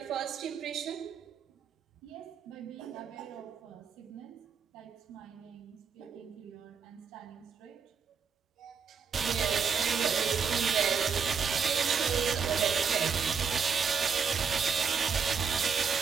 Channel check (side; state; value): left; quieter; 6.2 dB